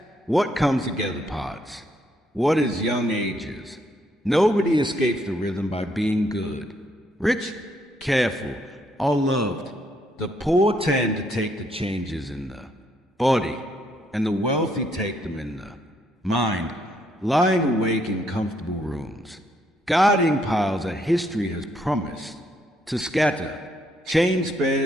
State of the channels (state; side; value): normal; both; correlation 0.72